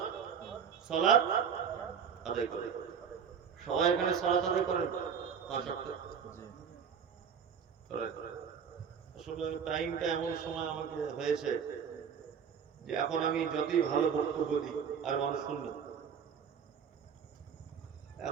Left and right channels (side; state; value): left; quieter; 7.2 dB